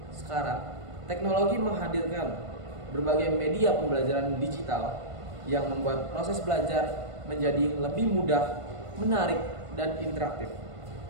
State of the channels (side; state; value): left; late; 1.5 ms